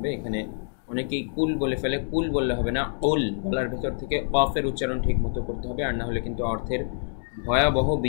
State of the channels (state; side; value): silent; right; digital silence